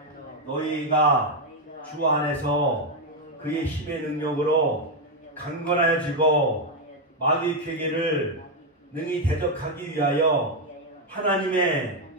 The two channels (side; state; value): both; normal; correlation 0.03